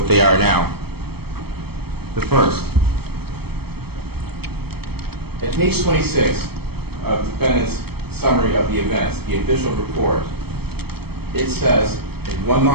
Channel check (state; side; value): late; left; 0.96 ms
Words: they are now. The first, at page 26 of the defendant's summary of the events, the official report, it says in one